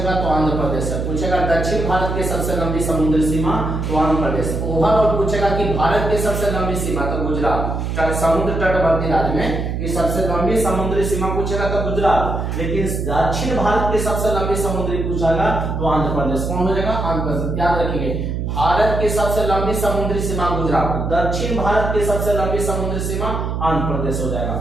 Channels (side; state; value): right; noise; hum, 2 dB below the sound